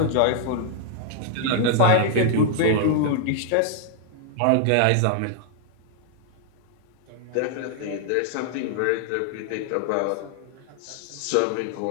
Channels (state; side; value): different; both; correlation -0.01